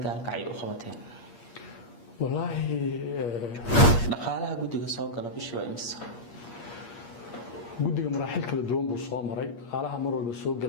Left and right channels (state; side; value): late; right; 8.5 ms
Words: gaalkacay u qabateen wallaahi dhaqaalaha guddiga soo gala bishii waa imisa guddiga maraaxil kala duwan buu soo maray dhaqaalaha mar walba soo